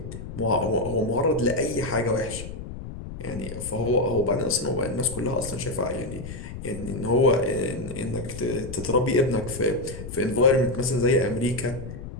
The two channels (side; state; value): left; noise; rumble, 10 dB below the sound